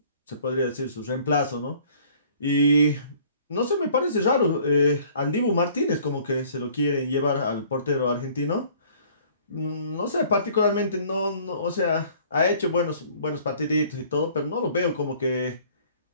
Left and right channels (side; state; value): both; inverted; correlation -0.54